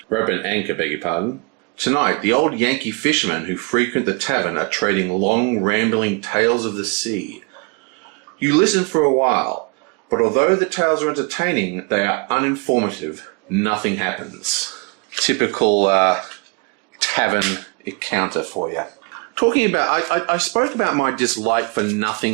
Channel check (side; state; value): left; quieter; 32.2 dB